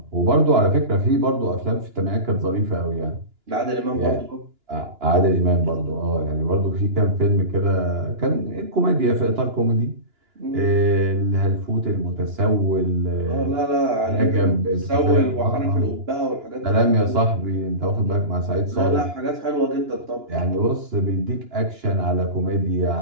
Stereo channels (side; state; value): left; late; 2.9 ms